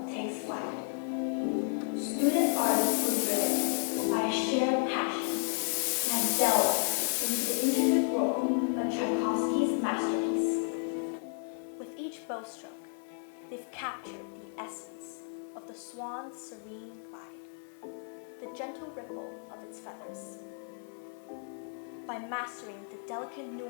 takes flight. Student artists were driven by a shared passion and have delved into the intricate world of Tchaikovsky's masterpiece. With each bowstroke, they've captured the essence of the swan's serene glide, the gentle ripple of its feathers. By mastering the delicate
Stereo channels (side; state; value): right; silent; 55 dB below the other